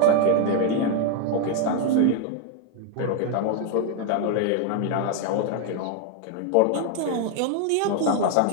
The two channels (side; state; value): both; different; correlation 0.00